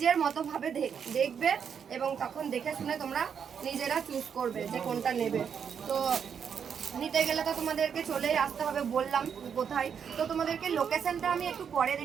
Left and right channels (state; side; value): quieter; left; 7.3 dB